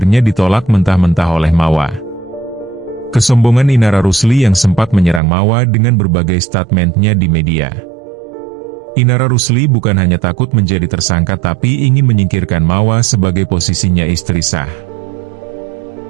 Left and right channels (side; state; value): left; drops out; at 5.2 s